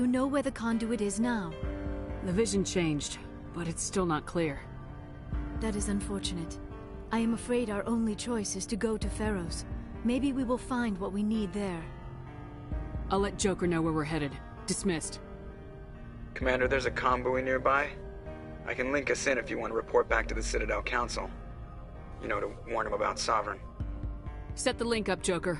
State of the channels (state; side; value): identical; both; correlation 1.00